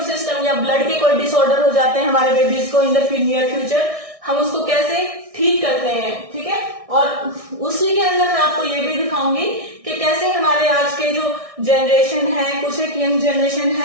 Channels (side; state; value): left; late; 1.6 ms